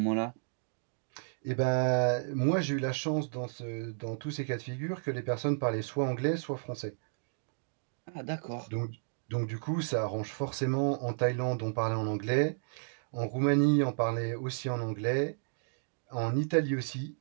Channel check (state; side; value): silent; left; digital silence